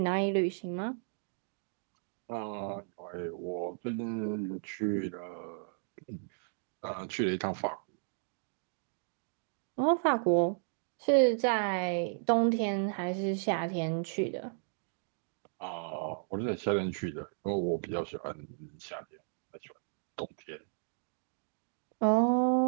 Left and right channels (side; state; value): left; silent; digital silence